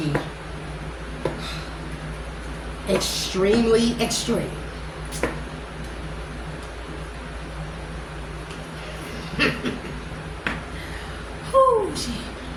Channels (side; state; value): both; identical; correlation 1.00